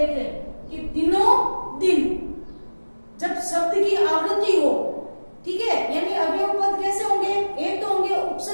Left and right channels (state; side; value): inverted; both; correlation -1.00